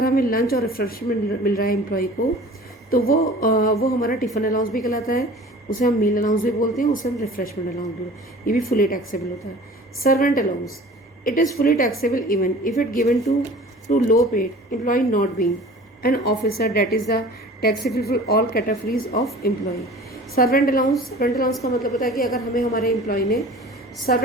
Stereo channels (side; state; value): both; normal; correlation 0.43